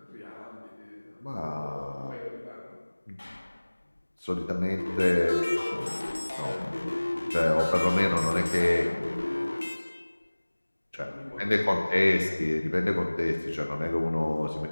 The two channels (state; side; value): inverted; both; correlation -1.00